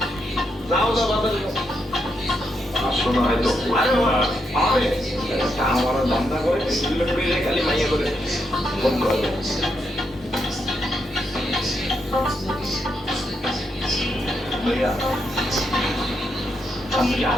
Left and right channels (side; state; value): both; normal; correlation 0.81